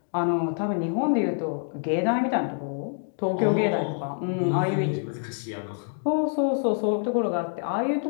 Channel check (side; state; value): right; silent; digital silence